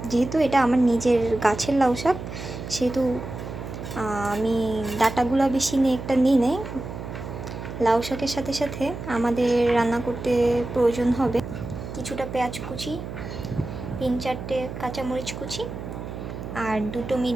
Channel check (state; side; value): noise; right; hum, 9 dB below the sound